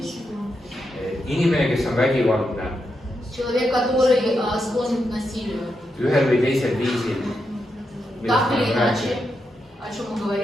Inimene, kes on vägivaldne, Человек, который склонен к насилию, ühel või teisel viisil, так или иначе, о чем мы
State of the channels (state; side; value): normal; both; correlation 0.85